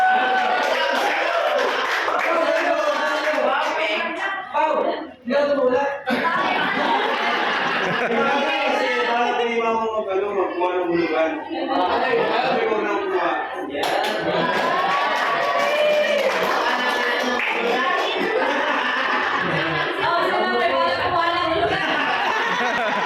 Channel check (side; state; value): both; identical; correlation 1.00